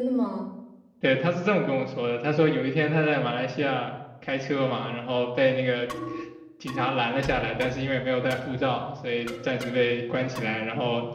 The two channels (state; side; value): identical; both; correlation 1.00